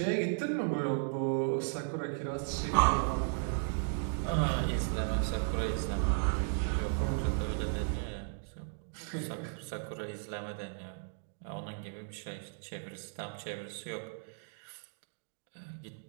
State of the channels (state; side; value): silent; left; digital silence